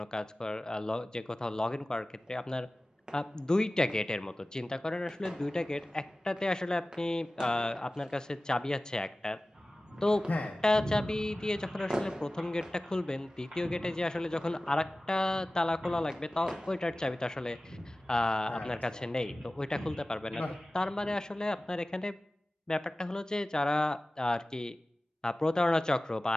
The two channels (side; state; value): both; normal; correlation 0.97